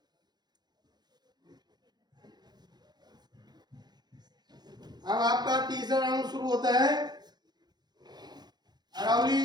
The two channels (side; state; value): left; late; 0.20 ms